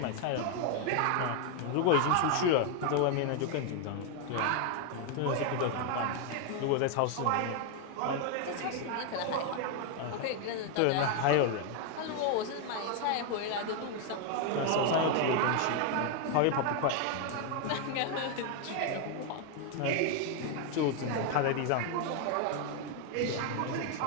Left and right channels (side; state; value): both; different; correlation 0.01